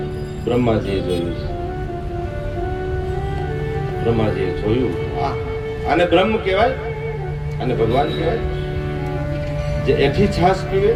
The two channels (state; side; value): identical; both; correlation 1.00